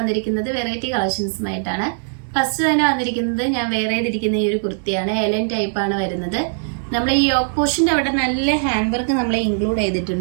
വെറൈറ്റി കളക്ഷൻസുമായിട്ടാണ്. ഫസ്റ്റ് തന്നെ വന്നിരിക്കുന്നത് ഞാൻ വേറെ ചെയ്തിരിക്കുന്ന ഈ ഒരു കുർത്തിയാണ്. എലൻ ടൈപ്പ് ആണ് വരുന്നത്. നമ്മൾ ഈ യോക്ക് പോർഷൻ്റെ അവിടെ നല്ല ഹാൻഡ് വർക്ക് നമ്മൾ ഇൻക്ലൂഡ്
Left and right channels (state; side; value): silent; left; digital silence